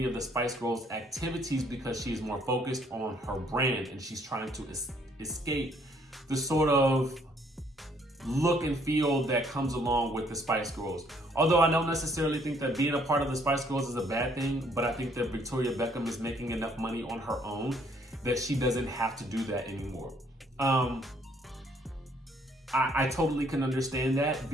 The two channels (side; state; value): both; normal; correlation 0.65